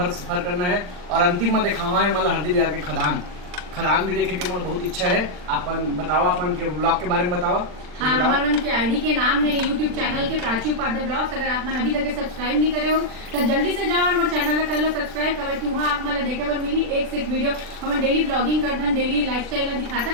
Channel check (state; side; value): late; left; 40 ms